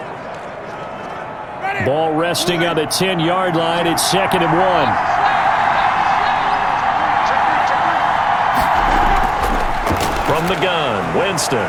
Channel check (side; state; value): both; identical; correlation 1.00